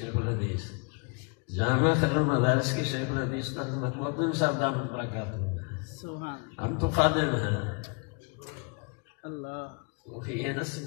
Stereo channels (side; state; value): right; quieter; 34.9 dB